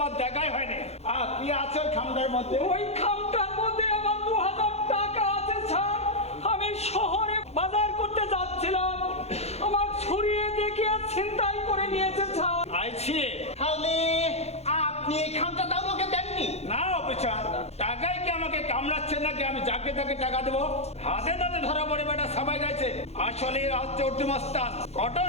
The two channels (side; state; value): right; late; 0.31 ms